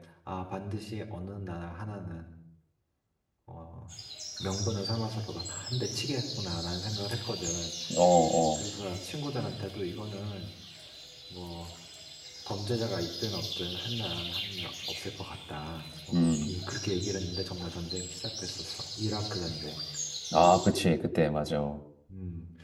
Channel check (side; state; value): both; identical; correlation 1.00